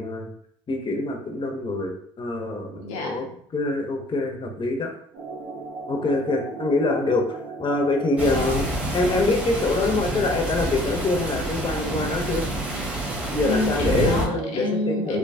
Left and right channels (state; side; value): normal; both; correlation 0.55